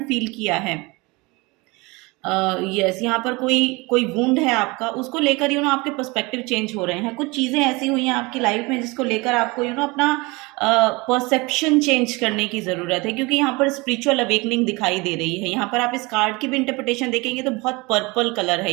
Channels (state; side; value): quieter; left; 24.9 dB